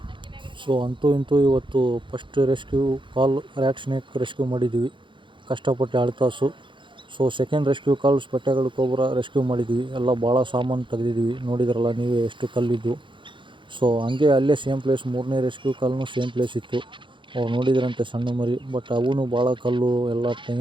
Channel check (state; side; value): late; left; 0.24 ms